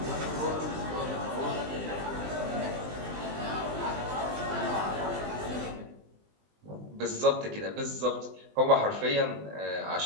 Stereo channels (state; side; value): late; left; 20 ms